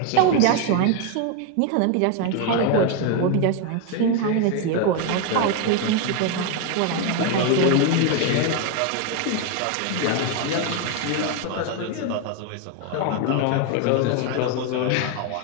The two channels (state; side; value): different; both; correlation 0.01